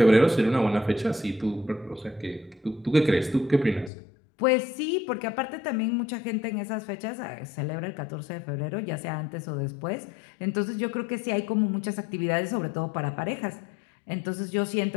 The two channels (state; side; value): drops out; right; at 3.9 s